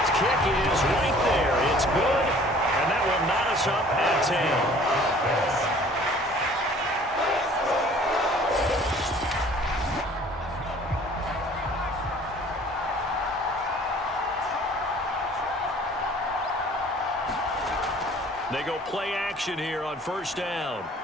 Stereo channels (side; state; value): both; normal; correlation 0.52